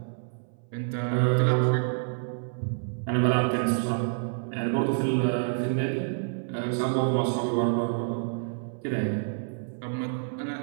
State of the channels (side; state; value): left; silent; 59 dB below the other